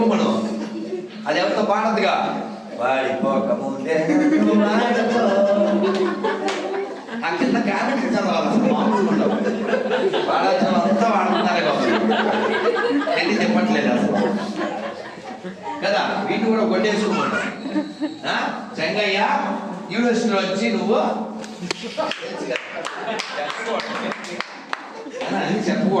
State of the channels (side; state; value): both; identical; correlation 1.00